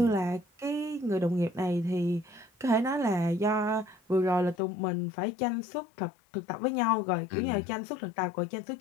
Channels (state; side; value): drops out; right; at 4.5 s